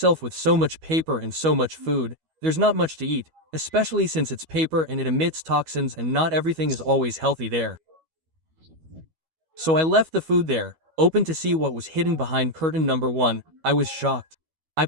with so much paper and so much food, there's not much to eat, especially since it's paper and it emits toxins and not everything is always healthy there. So I left the food there, open to see what was hidden behind curtain number 1. I was shocked. I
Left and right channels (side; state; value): left; late; 12 ms